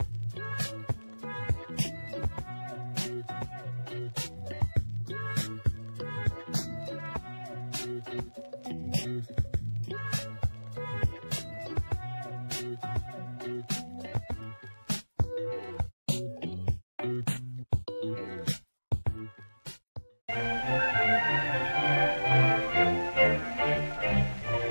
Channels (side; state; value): both; inverted; correlation -1.00